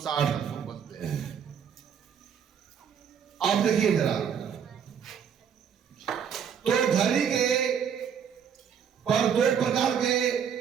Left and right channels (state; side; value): quieter; left; 7.7 dB